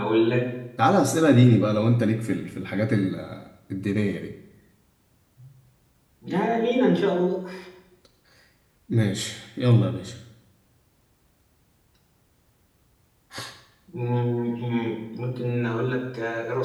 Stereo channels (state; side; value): identical; both; correlation 1.00